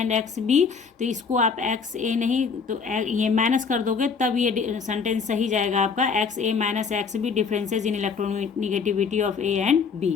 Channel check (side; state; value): right; quieter; 5.5 dB